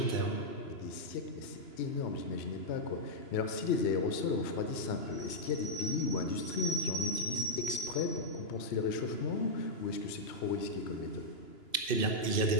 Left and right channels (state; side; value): late; right; 2.9 ms